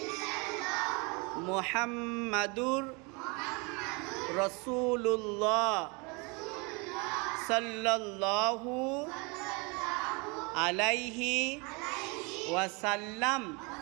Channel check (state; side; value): quieter; left; 29.4 dB